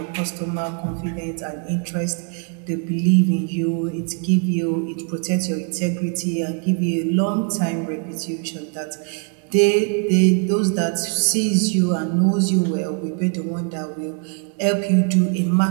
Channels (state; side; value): quieter; left; 39.7 dB